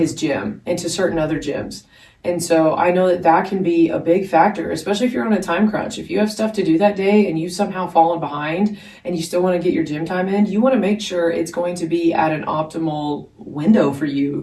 gym and to certain other gyms. And so I know that that can be a big factor, especially if you're on a time crunch. If you have stuff to do that day and you've somehow fallen behind and you still want to get your gym time in, you want to make sure it's going to be at an optimal window for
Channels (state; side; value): identical; both; correlation 1.00